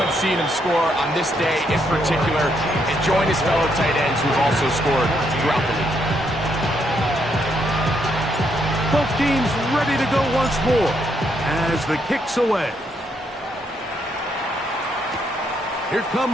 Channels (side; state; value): both; normal; correlation 0.75